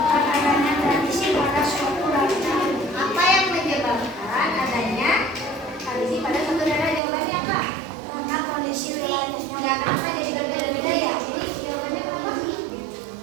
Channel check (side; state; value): left; drops out; at 7.0 s